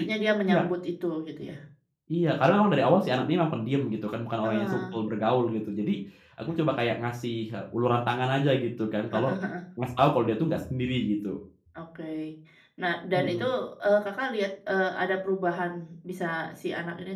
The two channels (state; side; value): identical; both; correlation 1.00